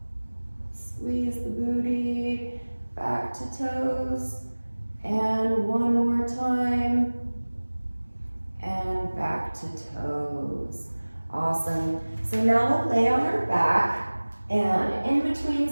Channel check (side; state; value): both; inverted; correlation -1.00